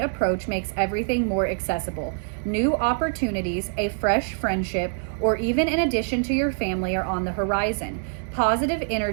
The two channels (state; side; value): silent; left; digital silence